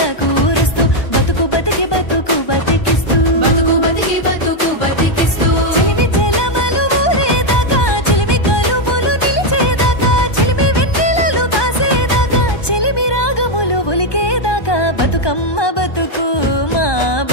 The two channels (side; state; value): right; late; 1.2 ms